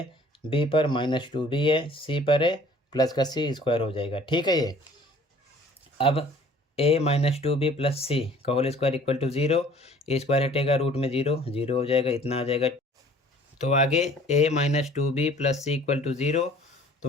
बी पर माइनस 2b है, सी पर है प्लस का सी स्क्वायर हो जाएगा, ठीक है। ये अब a माइनस 2b प्लस सी का whole square equal to 0, A square हटेगा रूट में 0 0 हो जाएगा, इतना आ जाएगा। तो आगे a minus 2b plus C equal to 0,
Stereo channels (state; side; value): normal; both; correlation 0.52